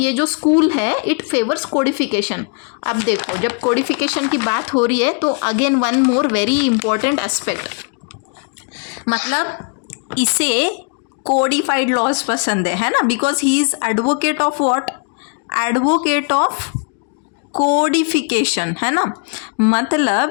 जो स्कूल है, इट फेवर्स कोडिफिकेशन। अब देखो, जब कोडिफिकेशन की बात हो रही है तो again one more very important aspect, मतलब इसे कोडिफाइड लॉज पसंद है ना, because he is advocate of what? Advocate of codification, है ना।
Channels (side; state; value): right; quieter; 39.3 dB